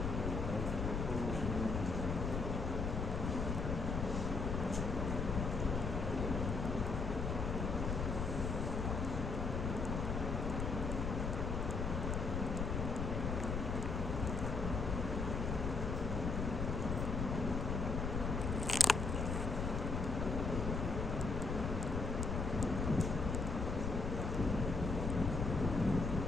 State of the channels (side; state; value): left; noise; rumble, 1 dB below the sound